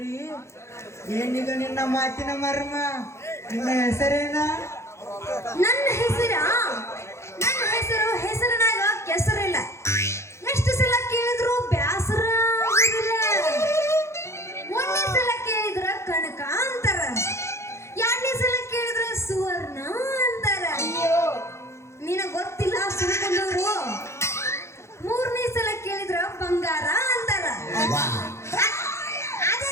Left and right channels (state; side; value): late; right; 0.13 ms